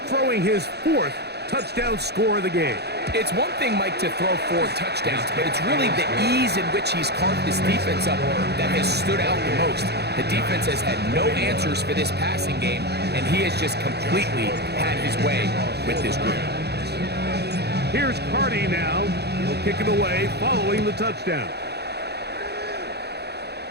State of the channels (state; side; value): late; left; 0.48 ms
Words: throwing his 4th touchdown score of the game. It's one thing, Mike, to throw 4 touchdowns, but it's really the ease in which he's carved this defense up that has stood out the most. The defense has had no answers for this passing game, and he has just completely had his way with this group. Here's Cardi now. He'll kick it away following the touchdown.